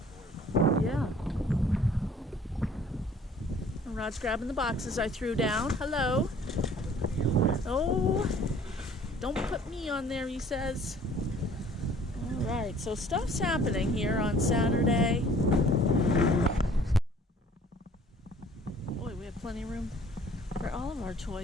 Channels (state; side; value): normal; both; correlation 0.54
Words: Yeah. And Rod's grabbing the boxes I threw down. Hello. Oh, don't put me on there, he says. Alright, so stuff's happening here on Saturday. Boy, we have plenty of room for all of our